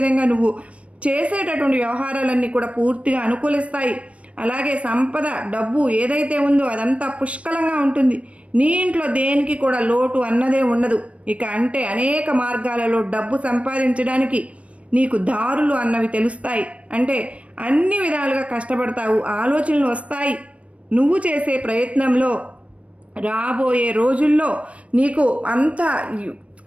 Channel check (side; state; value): left; late; 0.063 ms